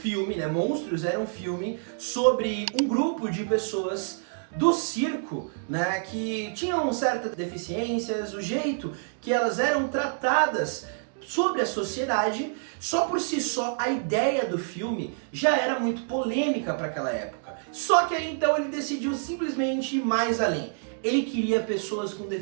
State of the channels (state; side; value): silent; left; digital silence